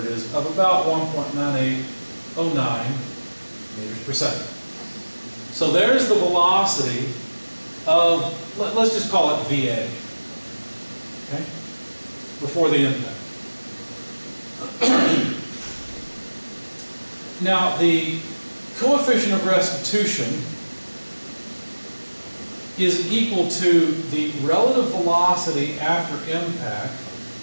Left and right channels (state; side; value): inverted; both; correlation -1.00